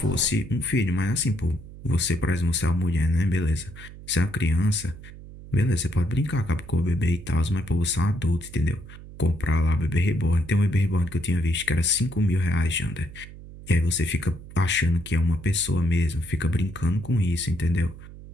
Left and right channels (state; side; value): noise; right; hum, 16 dB below the sound